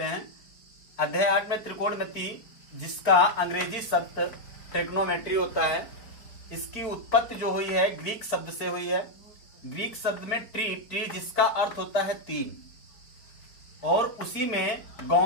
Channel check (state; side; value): late; right; 4.5 ms